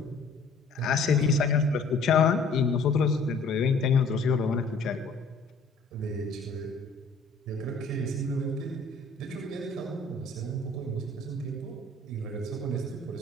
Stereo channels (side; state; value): right; quieter; 3.6 dB